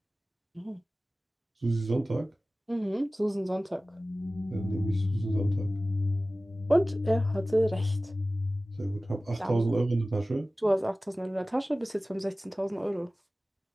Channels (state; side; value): normal; both; correlation 0.97